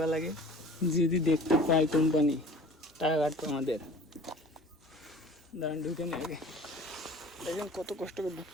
লাগে। যদি দেখতে পাই কোম্পানি টাকা কাটবে আমাদের। দাঁড়ান ঢুকে নিয়ে আগে, দেখেন কত কষ্ট করে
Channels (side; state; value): both; normal; correlation 0.44